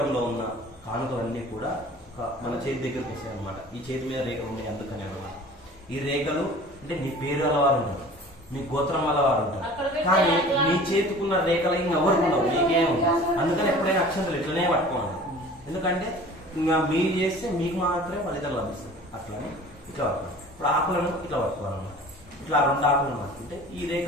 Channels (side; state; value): both; normal; correlation 0.44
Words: ఉన్న కానుకలన్నీ కూడా మన చేతి దగ్గరికి వస్తాయి అనమాట ఈ చేతి మీద రేఖలు ఉన్నాయి అందుకనే అన్నమాట ఈ రేఖలు అంటే నీ పేరు అలవారు ఉంటారు మీ గోత్రం వల్ల వారు ఉంటారు కానీ మీ చేతుకున్న రేఖలు ఇంకెవరికి ఉండవు మీకే ఉంటాయి అందుకని ఎప్పుడైనా అక్షంతలు ఇట్లనే పట్టుకోవాలి ఎందుకంటే ఇంకా మీరు చేస్తే మీకు మాత్రమే ఫలితాలు లభిస్తాయి అట్లనే ఇట్లా పట్టుకోవాలి. ఇప్పుడు ఆకులను ఇట్లా పట్టుకోవాలన్నమాట. ఇట్లా 2 ఆకులను పట్టుకుంటే ఈ